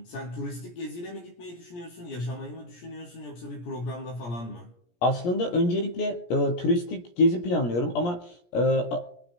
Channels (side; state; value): right; late; 17 ms